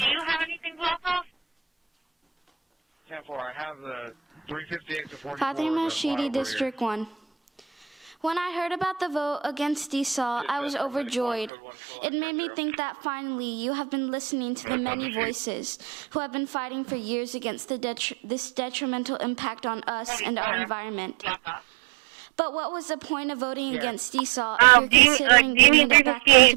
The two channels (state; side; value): drops out; left; at 11.5 s